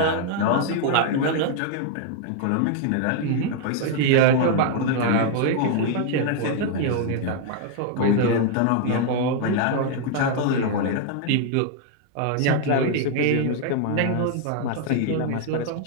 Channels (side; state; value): both; different; correlation 0.00